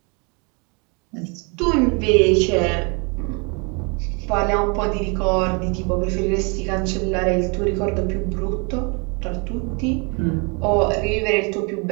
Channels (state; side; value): quieter; left; 32.7 dB